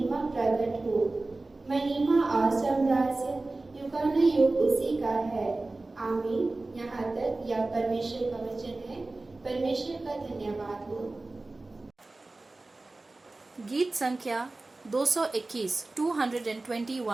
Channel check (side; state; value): left; quieter; 3.1 dB